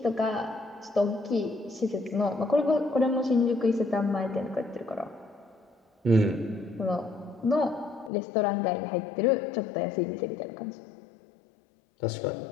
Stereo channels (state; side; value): drops out; right; at 8.1 s